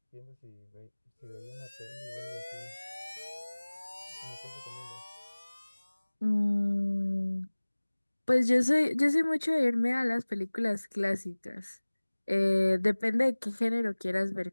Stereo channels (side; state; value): both; inverted; correlation -1.00